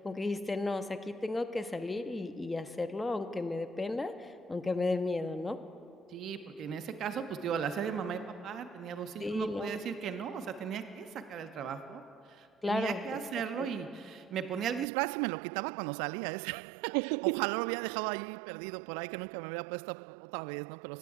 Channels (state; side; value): drops out; left; at 14.9 s